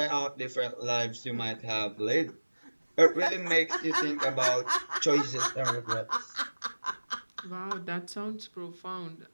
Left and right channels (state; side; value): inverted; both; correlation -1.00